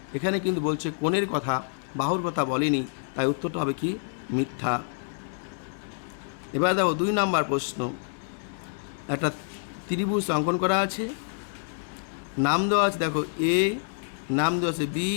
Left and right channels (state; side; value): silent; right; digital silence